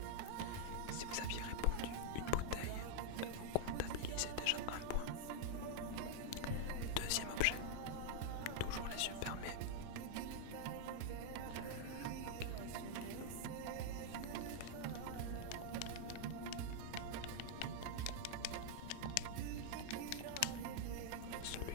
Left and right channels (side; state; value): both; different; correlation -0.01